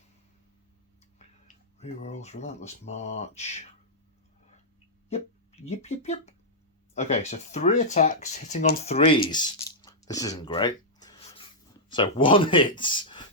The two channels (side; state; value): both; normal; correlation -0.09